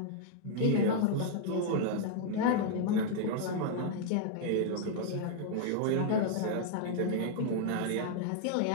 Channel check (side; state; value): both; different; correlation -0.01